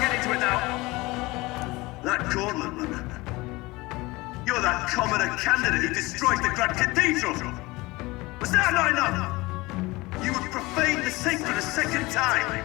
get into it now. That Cornland runner. You're that commoner candidate who destroyed the Grand Cathedral! Was that not enough? You would profane the sacred a second time!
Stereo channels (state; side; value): quieter; right; 21.9 dB